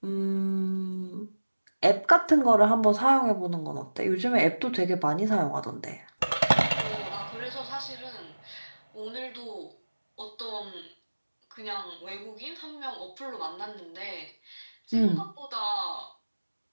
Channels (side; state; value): both; inverted; correlation -1.00